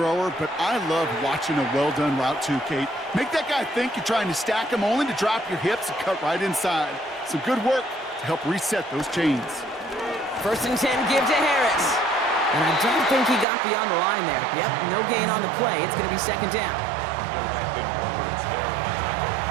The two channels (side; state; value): left; drops out; at 13.5 s